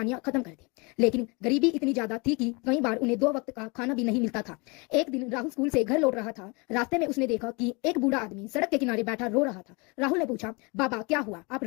खत्म कर दे। लेकिन गरीबी इतनी ज्यादा थी कि कई बार उन्हें 2 वक्त का खाना भी नहीं मिलता था। एक दिन राहुल स्कूल से घर लौट रहा था। रास्ते में उसने देखा कि एक बूढ़ा आदमी सड़क के किनारे बैठा रो रहा था। राहुल ने पूछा, बाबा क्या हुआ, आप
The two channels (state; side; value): quieter; right; 29.1 dB